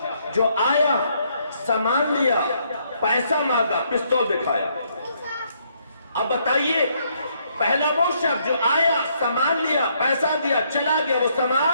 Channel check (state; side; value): inverted; both; correlation -0.71